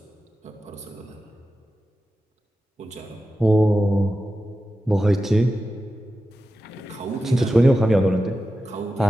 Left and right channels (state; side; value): normal; both; correlation 0.92